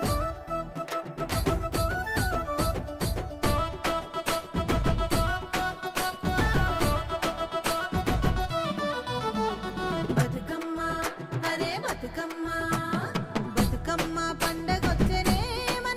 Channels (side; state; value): both; identical; correlation 1.00